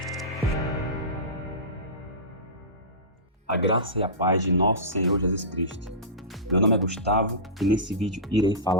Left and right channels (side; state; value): both; normal; correlation -0.19